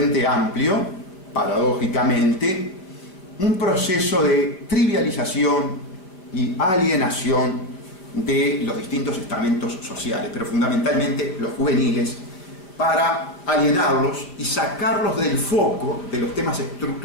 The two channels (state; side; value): late; right; 5.1 ms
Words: Amplio, paradójicamente, un proceso de trivialización y alienación de los distintos estamentos sociales, pero fundamentalmente los juveniles, para alienarlos y sacarlos del foco de los temas